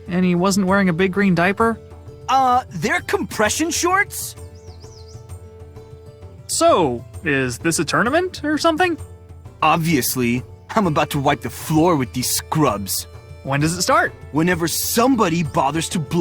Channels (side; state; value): both; identical; correlation 1.00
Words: and he wasn't wearing a big green diaper. They're compression shorts? So, is this a tournament or something? Obviously. I'm about to wipe the floor with these scrubs. When does it start? Whenever somebody bothers to